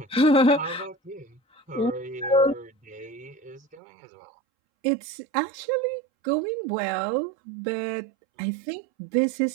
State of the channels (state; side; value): drops out; left; at 3.8 s